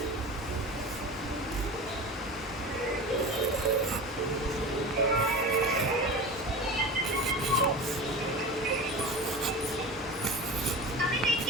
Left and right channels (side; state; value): both; normal; correlation 0.30